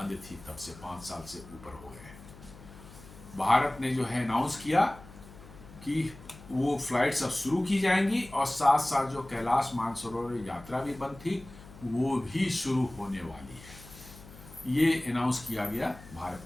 थी, तब से 5 साल से ऊपर हो गए हैं। भारत ने जो है अनाउंस किया कि वो फ्लाइट्स अब शुरू की जाएंगी और साथ साथ जो कैलाश मानसरोवर यात्रा भी बंद थी वो भी शुरू होने वाली है। ये अनाउंस किया गया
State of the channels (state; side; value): noise; left; hum, 19 dB below the sound